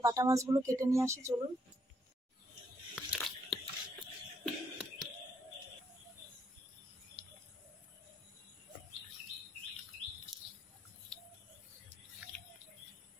বাটা মাছগুলো কেটে নিয়ে আসি, চলুন।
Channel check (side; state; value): both; normal; correlation 0.73